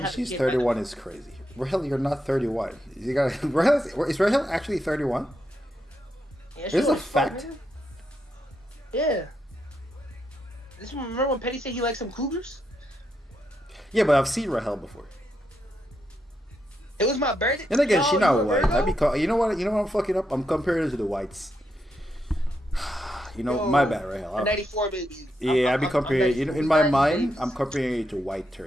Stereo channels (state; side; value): normal; both; correlation 0.82